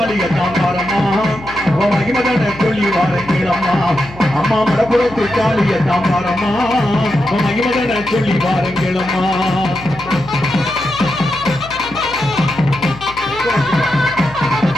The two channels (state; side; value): noise; left; hum, 17 dB below the sound